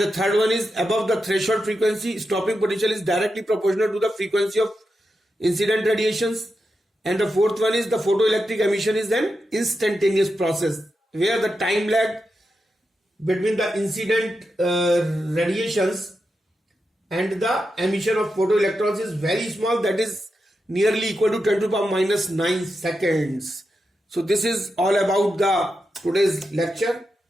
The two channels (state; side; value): normal; both; correlation 0.88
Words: third one is above the threshold frequency, stopping potential is directly proportional to the frequency of incident radiations. And the fourth one is the photoelectric emission is an instantaneous process where the time lag between the incident radiations and the emission of photoelectrons is very small, that is nearly equal to 10 to the power minus 9 seconds. So this is all about the today's lecture.